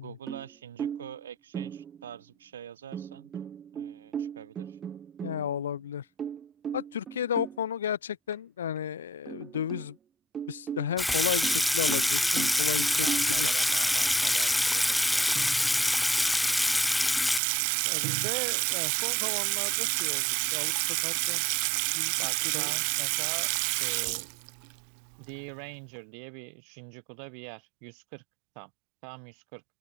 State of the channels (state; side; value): drops out; left; at 17.4 s